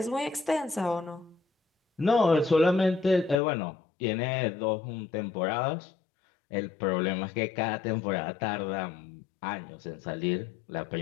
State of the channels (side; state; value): right; drops out; at 3.4 s